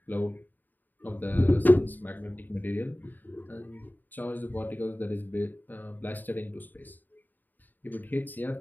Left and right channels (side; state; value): right; late; 0.088 ms